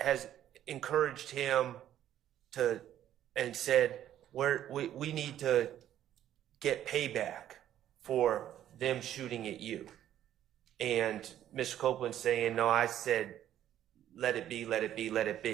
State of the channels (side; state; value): left; quieter; 11.5 dB